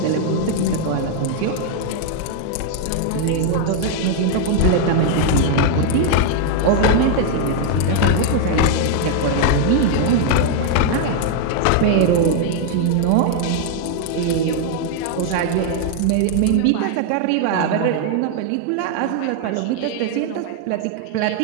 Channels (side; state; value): both; different; correlation 0.00